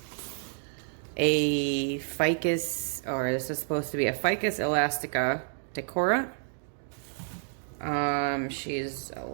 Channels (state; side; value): silent; left; digital silence